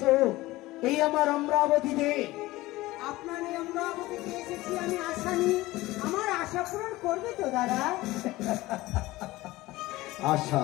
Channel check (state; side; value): quieter; right; 18.7 dB